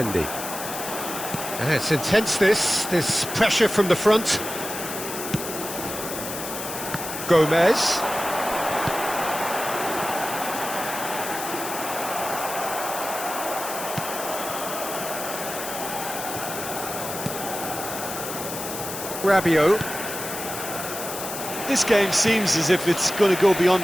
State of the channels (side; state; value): left; noise; hiss, 7 dB below the sound